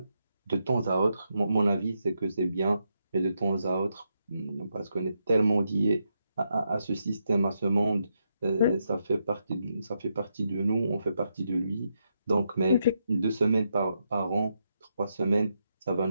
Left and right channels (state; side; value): inverted; both; correlation -0.82